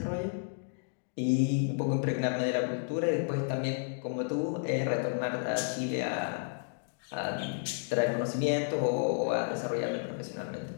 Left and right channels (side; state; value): right; silent; digital silence